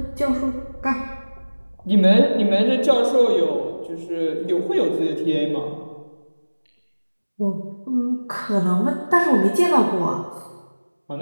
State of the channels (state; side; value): inverted; both; correlation -1.00